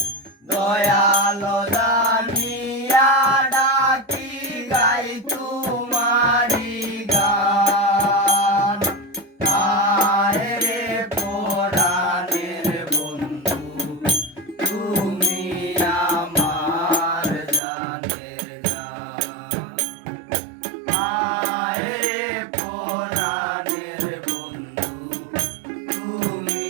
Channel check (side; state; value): left; drops out; at 17.6 s